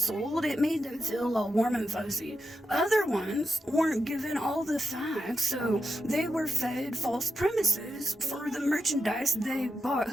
It made them feel all warm and fuzzy. Other ones weren't given all the facts, so they were fed false premises for the merchandise they bought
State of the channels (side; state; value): both; normal; correlation 0.87